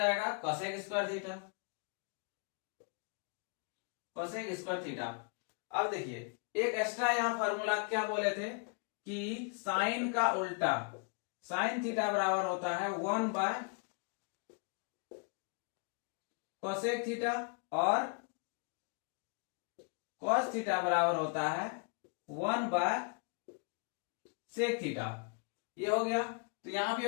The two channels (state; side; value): quieter; right; 39.6 dB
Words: cosec square theta, cosec square theta. अब देखिए एक एक्स्ट्रा यहां फॉर्मूला क्या बोले थे कि साइन का उल्टा, साइन थीटा बराबर होता है 1 बाय कोसेक थीटा और कॉस थीटा बराबर होता है 1 बाय सेक थीटा। ये हो गया। तो यहां भी